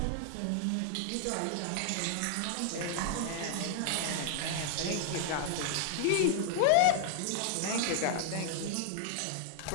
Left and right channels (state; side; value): different; both; correlation 0.00